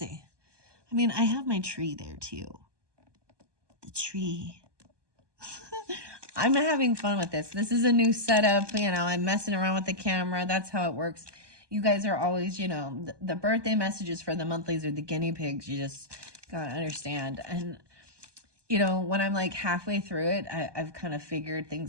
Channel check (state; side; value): late; left; 1.2 ms